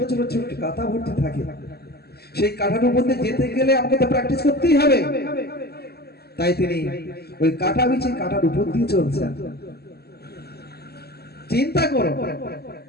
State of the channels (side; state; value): right; late; 0.46 ms